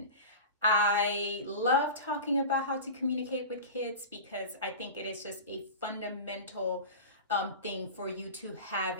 I love talking about how to communicate with kids because I think it is just a fundamental thing for you to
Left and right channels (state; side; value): inverted; both; correlation -0.31